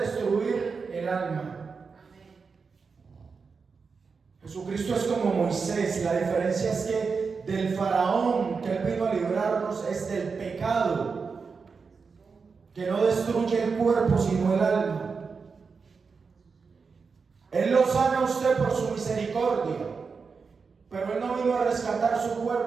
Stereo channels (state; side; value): quieter; left; 5.1 dB